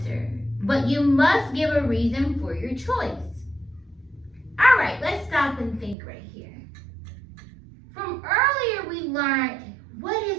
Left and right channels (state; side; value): drops out; left; at 6.0 s